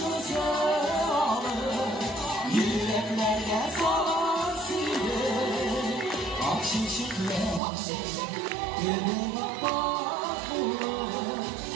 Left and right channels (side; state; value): left; drops out; at 7.6 s